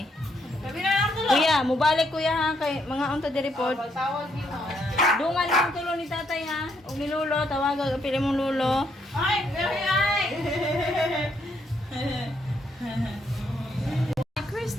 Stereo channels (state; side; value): normal; both; correlation 0.74